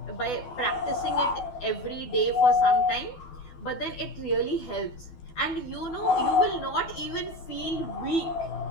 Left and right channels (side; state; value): right; late; 12 ms